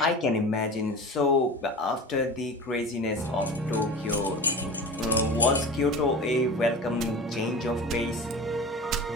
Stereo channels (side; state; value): both; normal; correlation 0.33